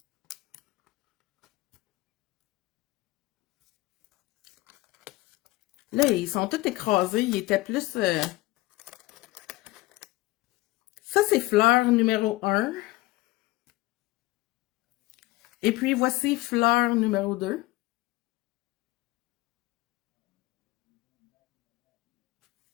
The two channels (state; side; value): quieter; right; 19.6 dB